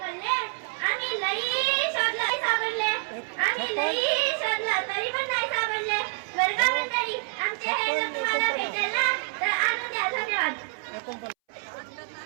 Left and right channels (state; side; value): silent; left; 60 dB below the other